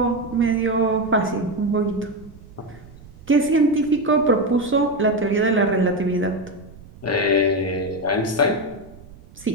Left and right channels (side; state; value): right; noise; rumble, 21 dB below the sound